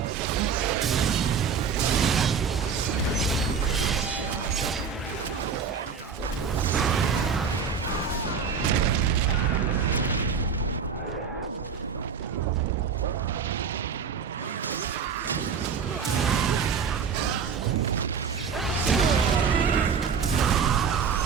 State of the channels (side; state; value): left; quieter; 6.2 dB